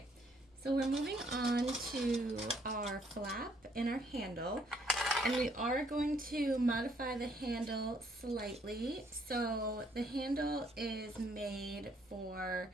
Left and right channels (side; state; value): both; normal; correlation 0.67